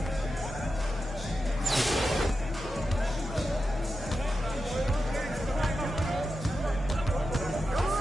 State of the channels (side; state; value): both; normal; correlation 0.90